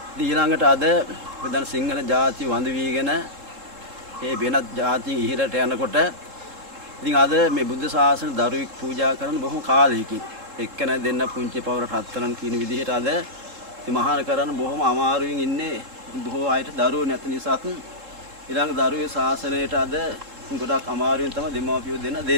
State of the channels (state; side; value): late; left; 3.7 ms